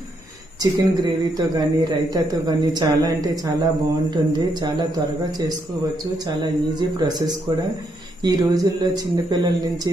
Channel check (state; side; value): noise; left; rumble, 27 dB below the sound